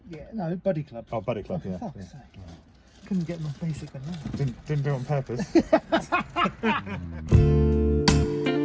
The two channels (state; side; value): identical; both; correlation 1.00